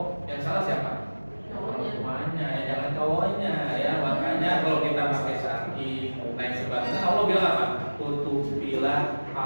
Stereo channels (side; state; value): both; inverted; correlation -1.00